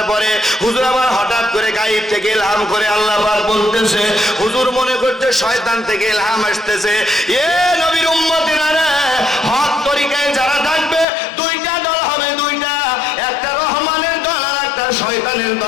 পরে হুজুর আবার হঠাৎ করে গায়েব থেকে ইলহাম করে আল্লাহ পাক বলতেছে, হুজুর মনে করতে শয়তান থেকে ইলহাম আসতেছে, এ নবীর উম্মতেরা রে, হক তরিকায় যারা থাকবে দুইটা দল হবে, দুইটা, একটা রহমানের দল আর একটা শয়তানের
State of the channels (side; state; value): right; drops out; at 11.1 s